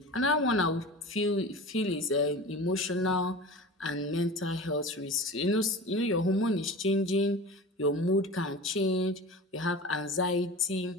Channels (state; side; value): normal; both; correlation 0.34